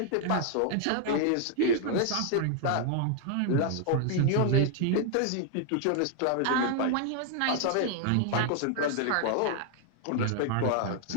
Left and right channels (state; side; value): different; both; correlation 0.00